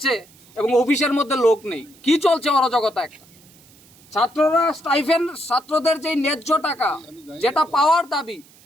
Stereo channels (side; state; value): right; noise; hiss, 27 dB below the sound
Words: এবং অফিসের মধ্যে লোক নেই। কি চলছে অরাজকতা একটা। ছাত্ররা স্টাইফেন্ড, ছাত্রদের যে ন্যায্য টাকা যেটা পাওয়ার দাবি